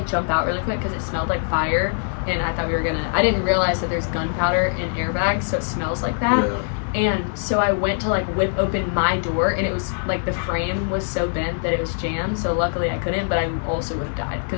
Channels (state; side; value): silent; right; 60 dB below the other